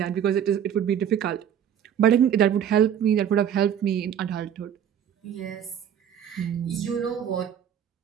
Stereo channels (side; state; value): left; quieter; 9.2 dB